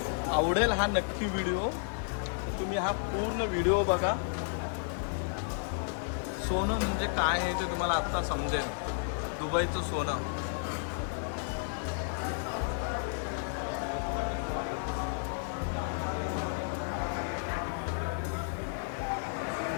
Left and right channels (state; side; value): silent; right; digital silence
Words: आवडेल हा नक्की व्हिडिओ. तुम्ही हा पूर्ण व्हिडिओ बघा. सोनं म्हणजे काय आहे ते तुम्हाला आत्ता समजेल. दुबईचं सोनं.